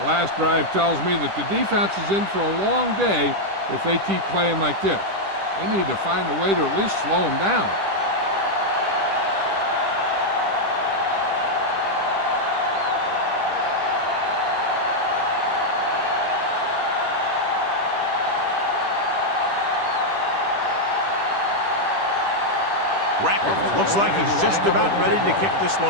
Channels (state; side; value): late; left; 10 ms